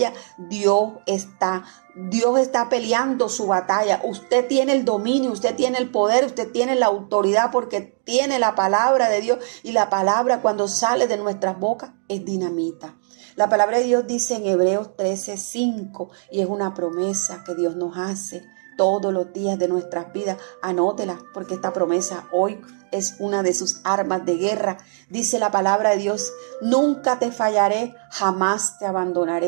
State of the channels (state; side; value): silent; left; digital silence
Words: Dios está peleando su batalla. Usted tiene el dominio, usted tiene el poder, usted tiene la autoridad, porque tiene la palabra de Dios, y la palabra cuando sale de nuestras bocas es dinamita. La palabra de Dios dice en Hebreos 13:5, y es una promesa que Dios nos hace todos los días de nuestras vidas. Anótela, porque esta promesa hoy es una de sus armas de guerra. Dice la palabra de Dios: nunca te fallaré, jamás te